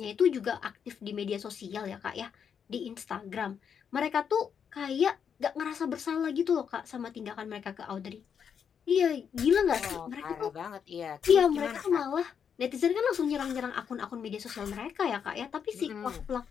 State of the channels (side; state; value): right; quieter; 7.4 dB